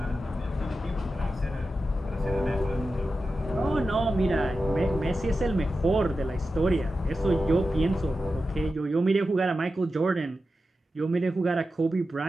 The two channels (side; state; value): both; normal; correlation 0.92